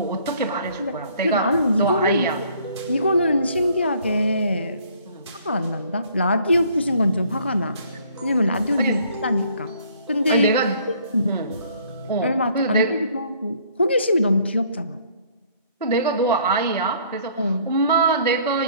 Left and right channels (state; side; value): inverted; both; correlation -0.60